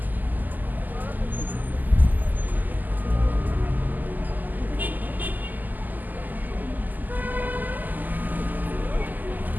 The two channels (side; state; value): left; late; 0.084 ms